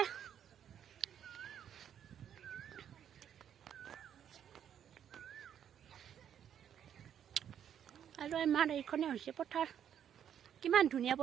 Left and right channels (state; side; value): quieter; left; 9.3 dB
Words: আৰু আমাৰ এইখনে হৈছে পথাৰ কিমান ধুনীয়া